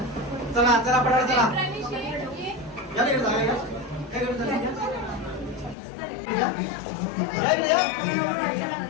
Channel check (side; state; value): right; drops out; at 5.8 s